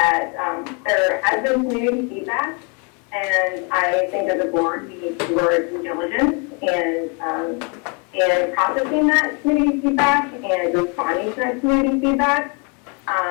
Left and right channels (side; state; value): right; quieter; 34.3 dB